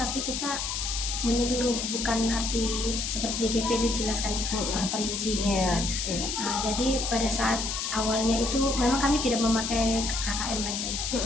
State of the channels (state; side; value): noise; left; hiss, 2 dB below the sound